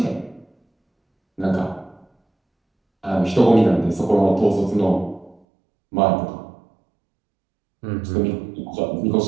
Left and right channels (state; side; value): drops out; left; at 5.4 s